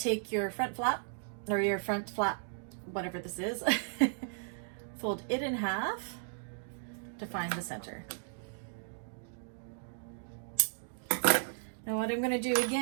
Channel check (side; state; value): left; silent; digital silence